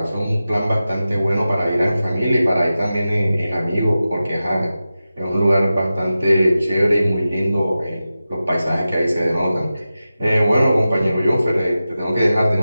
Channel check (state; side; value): inverted; both; correlation -0.93